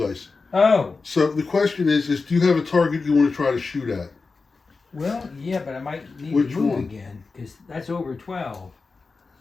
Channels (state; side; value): quieter; right; 4.2 dB